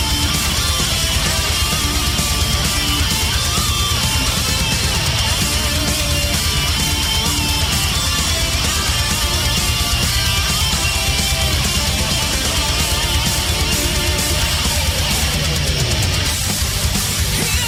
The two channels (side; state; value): both; identical; correlation 1.00